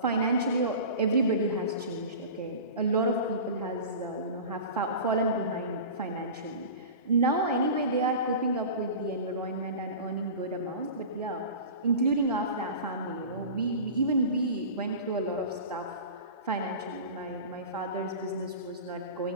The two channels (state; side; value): inverted; both; correlation -0.33